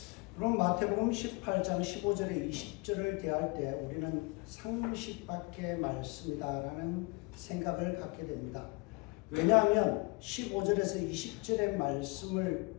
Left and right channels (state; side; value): quieter; right; 27.6 dB